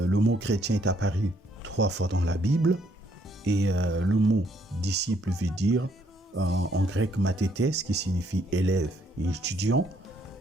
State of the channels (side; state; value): both; normal; correlation 0.69